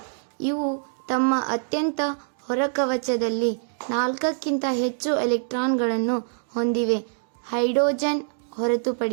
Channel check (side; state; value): left; silent; digital silence